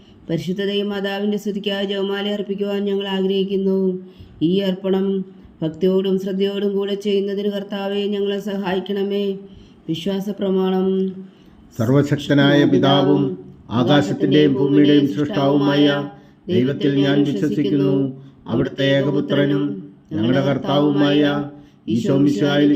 പരിശുദ്ധ ദൈവമാതാവിൻ്റെ സ്തുതിക്കായി ജപമാല അർപ്പിക്കുവാൻ ഞങ്ങൾ ആഗ്രഹിക്കുന്നു. ഈ അർപ്പണം ഭക്തിയോടും ശ്രദ്ധയോടും കൂടെ ചെയ്യുന്നതിന് കർത്താവെ ഞങ്ങളെ സഹായിക്കണമേ. വിശ്വാസ പ്രമാണം. സർവശക്തനായ പിതാവും ആകാശത്തിൻ്റെയും ഭൂമിയുടെയും സൃഷ്ടാവുമായ ദൈവത്തിൽ ഞാൻ വിശ്വസിക്കുന്നു. അവിടുത്തെ ഏകപുത്രനും ഞങ്ങളുടെ കർത്താവുമായ ഈശോമിശിഹായിൽ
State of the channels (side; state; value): both; identical; correlation 1.00